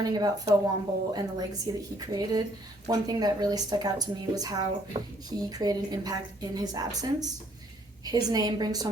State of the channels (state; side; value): normal; both; correlation 0.64